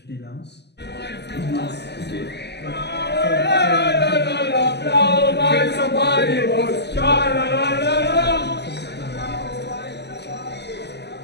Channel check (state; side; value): late; right; 0.49 ms